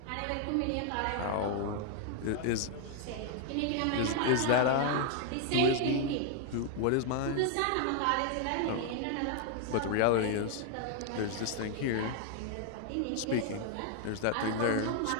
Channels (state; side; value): different; both; correlation 0.00